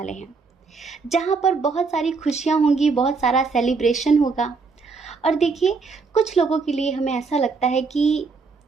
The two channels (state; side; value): quieter; left; 4.6 dB